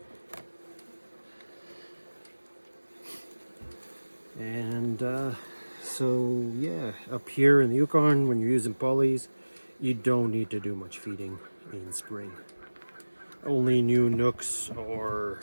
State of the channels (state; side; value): inverted; both; correlation -1.00